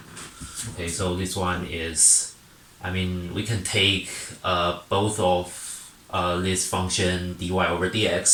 Okay, so this one is, we can take both of this function dy over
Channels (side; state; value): both; identical; correlation 1.00